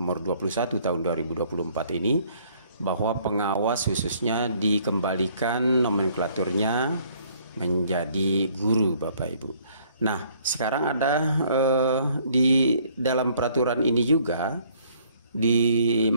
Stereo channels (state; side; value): inverted; both; correlation -0.62